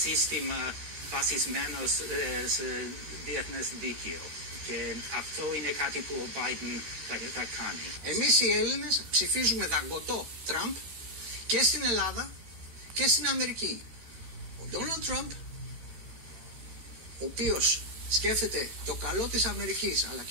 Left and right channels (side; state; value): left; late; 13 ms